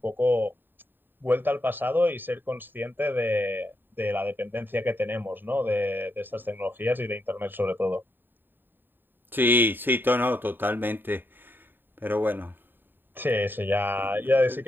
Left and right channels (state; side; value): late; left; 0.094 ms